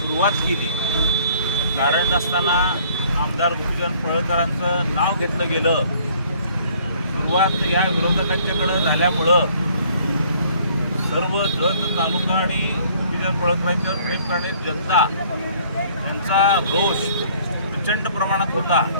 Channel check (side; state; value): both; inverted; correlation -0.58